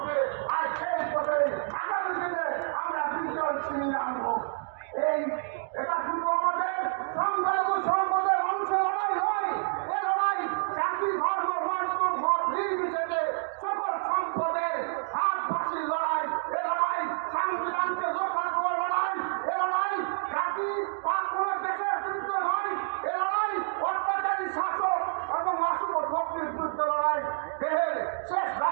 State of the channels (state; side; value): silent; left; digital silence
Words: আর সেই পথে আগামী দিনে আমরা বিজয় ছিনিয়ে আনবো। এটা শুধু আমাদের সংখ্যালঘু সম্পদের মানুষের লড়াই নয়, এ লড়াই জাতি ধর্ম বর্ণ মত নির্বিশেষে সকল সম্পদের ভাগবাসীর লড়াই। এ লড়াই সংবিধানকে রক্ষা করার লড়াই। এ লড়াই জাতি বা কোনো দেশের বিরুদ্ধে নয়। এ লড়াই অত্যাচারী শাসক এবং অশুভ শক্তির বিরুদ্ধে লড়াই। দেহের শেষ